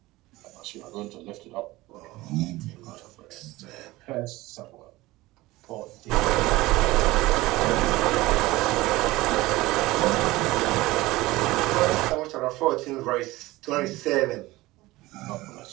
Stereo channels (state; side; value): quieter; left; 19.2 dB